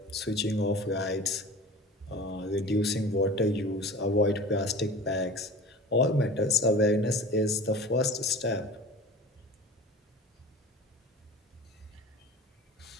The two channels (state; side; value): normal; both; correlation 0.38